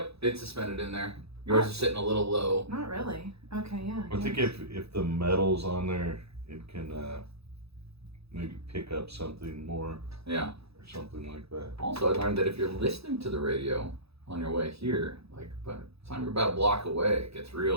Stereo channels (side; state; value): left; late; 0.78 ms